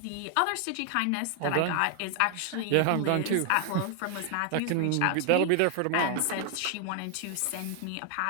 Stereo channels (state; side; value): different; both; correlation 0.00